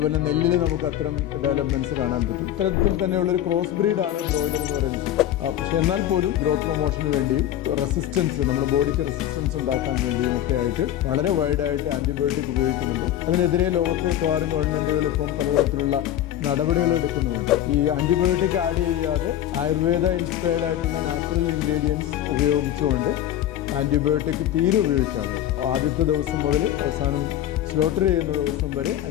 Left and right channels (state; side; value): quieter; right; 12.0 dB